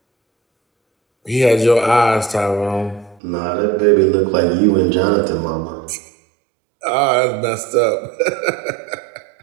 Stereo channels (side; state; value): left; drops out; at 3.2 s